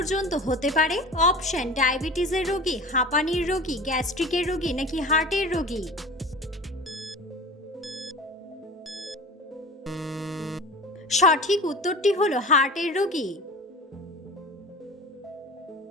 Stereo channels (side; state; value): both; normal; correlation 0.36